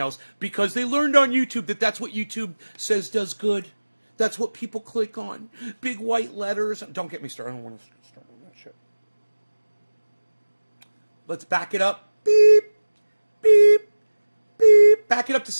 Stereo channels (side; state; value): both; inverted; correlation -1.00